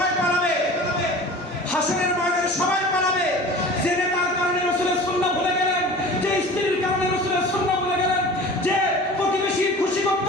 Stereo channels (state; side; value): normal; both; correlation 0.39